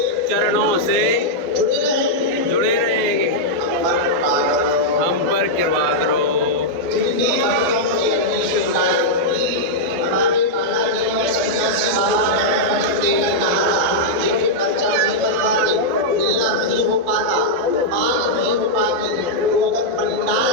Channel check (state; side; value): late; left; 12 ms